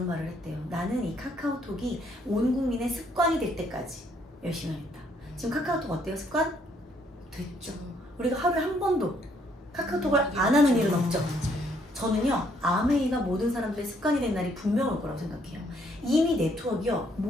말을 했대요. 나는 이 카카오톡이 온 국민의 습관이 될 때까지 열심히 하겠다. 지금 카카오톡 어때요? 습관? 됐죠. 우리가 하루에 한 번도 카카오톡을 안 하는 일은 없죠. 저는요 아메이가 모든 사람들의 습관이 된 날이 분명 올 거라고 생각해요. 이미 네트워크요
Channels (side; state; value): both; normal; correlation 0.68